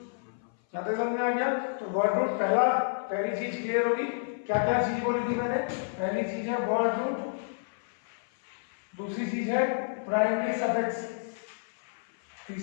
क्या समझ में आ गया? तो वर्ड रूट पहली चीज क्लियर होगी। क्या क्या चीज बोली थी मैंने? पहली चीज है वर्ड रूट, दूसरी चीज है प्राइमरी सफिक्स,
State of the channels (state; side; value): silent; right; 58 dB below the other